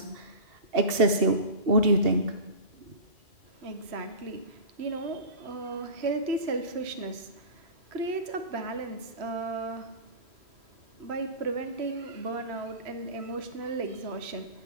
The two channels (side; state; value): left; late; 2.7 ms